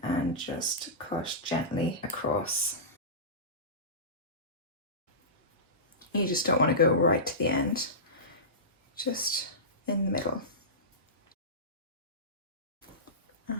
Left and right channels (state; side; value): normal; both; correlation -0.20